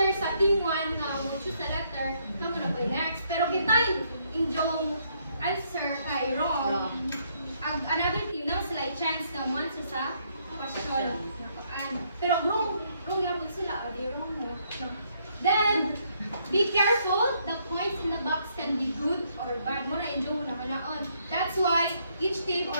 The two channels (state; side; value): inverted; both; correlation -0.71